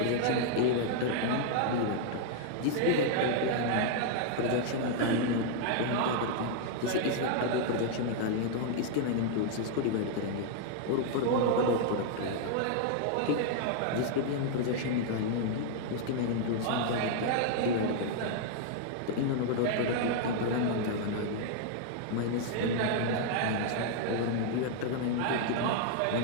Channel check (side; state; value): both; different; correlation 0.00